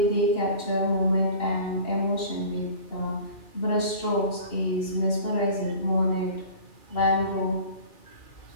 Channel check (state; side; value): late; right; 2.7 ms